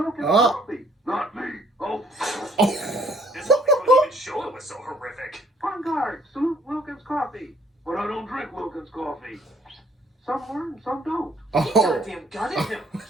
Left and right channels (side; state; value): both; normal; correlation 0.63